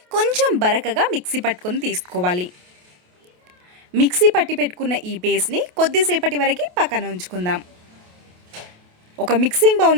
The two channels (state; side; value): late; left; 28 ms